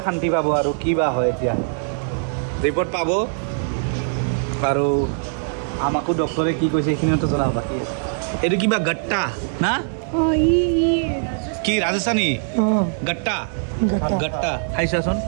শান্তি পাব আৰু কি বা হয়। এতিয়া ৰিপৰ্ট পাব আৰু আমাকো ডক্টৰে কি কৈছে এইখিনিতো জনাব বাকী আছে। এইটো কিবা গট্টা না কি ৰাজস্থানী গট্টা গট্টা খাইছোৱাচোন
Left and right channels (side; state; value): left; silent; digital silence